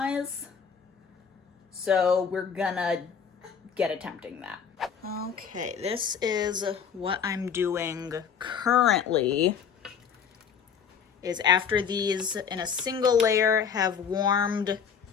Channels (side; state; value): right; quieter; 7.0 dB